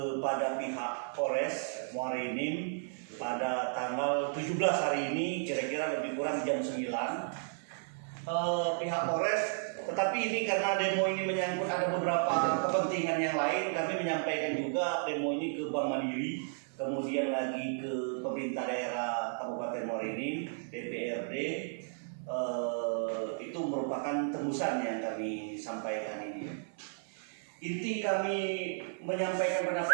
pihak Polres Muara Enim pada tanggal 17 hari ini, kira-kira lebih kurang jam 9. Pihak Polres, tetapi ini karena demo ini menyangkut ada beberapa kepentingan yang lain, kami menyampaikan juga demo ini ke Bank Mandiri, kemudian lagi ke pemerintah daerah Kabupaten Muara Enim, DPRD. Itu merupakan tembusan yang kami sampaikan ini. Inti kami menyampaikan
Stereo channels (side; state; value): left; silent; 55 dB below the other